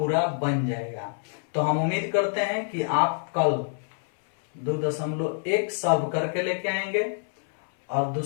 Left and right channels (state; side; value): silent; right; 61 dB below the other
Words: बन जाएगा। तो हम उम्मीद करते हैं कि आप कल 2.1 सॉल्व करके लेके आएंगे और